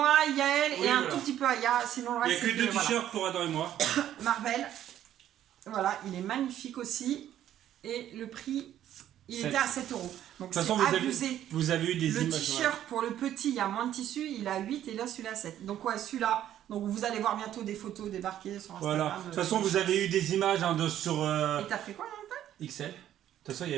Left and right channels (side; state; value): left; quieter; 11.5 dB